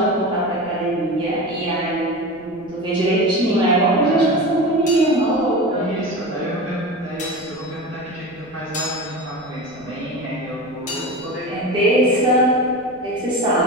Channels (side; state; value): right; noise; rumble, 26 dB below the sound